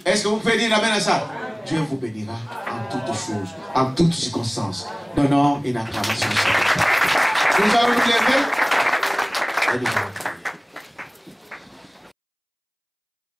Est-ce que vous pouvez dire amen à ça? Dieu vous bénira en toutes choses, en toutes circonstances. Donnons une acclamation. Nous allons nous lever et nous allons prier.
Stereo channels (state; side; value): identical; both; correlation 1.00